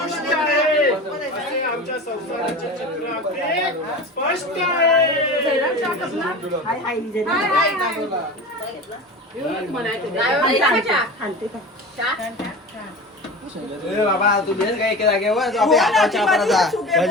आहे. असे आमच्या संसाराचे चित्र अगदी स्पष्ट आहे. बाबा तू बेस काय एका जागेवर काय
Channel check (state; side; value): normal; both; correlation 0.32